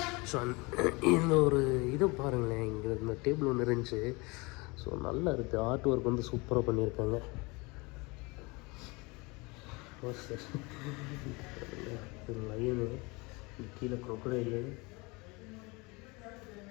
ஸோ இந்த ஒரு இது பாருங்களேன், இங்கே இந்த டேபிள் ஒன்று இருந்துச்சு. ஸோ நல்லா இருக்குது. ஆர்ட் ஒர்க் வந்து சூப்பராக பண்ணியிருக்காங்க. இது லயனு, கீழே க்ரொக்கடைலு,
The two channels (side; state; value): right; quieter; 26.3 dB